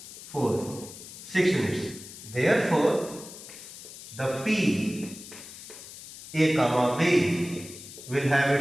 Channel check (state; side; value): noise; left; hiss, 15 dB below the sound